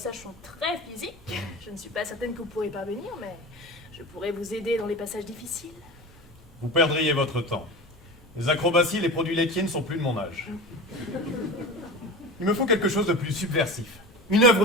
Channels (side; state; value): both; normal; correlation 0.31